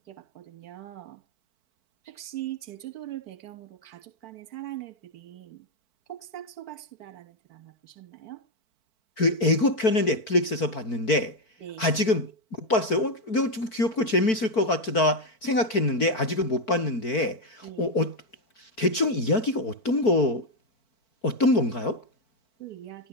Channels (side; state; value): right; late; 4.5 ms